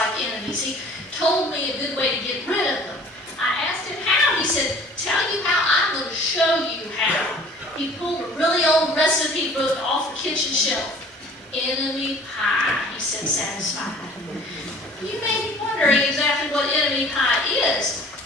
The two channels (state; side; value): normal; both; correlation 0.49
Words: enemies. He told me a good way to get rid of them. I asked him how. He said, tell you how, I'm going to show you how. He pulled a really old recipe book off the kitchen shelf. Enemy pie, he said, satisfied. You may be wondering exactly what enemy pie is.